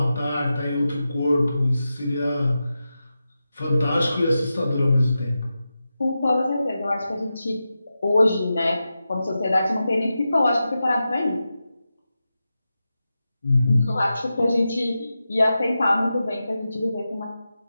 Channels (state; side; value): inverted; both; correlation -0.91